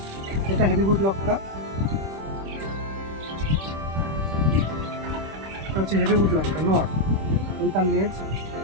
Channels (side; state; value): left; late; 26 ms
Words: এটা হেভিবুট লক্কা, এটা হচ্ছে হেভিবুট লক্কা নর। এই তার লেজ,